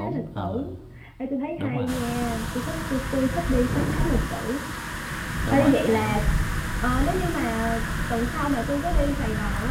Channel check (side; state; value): both; identical; correlation 1.00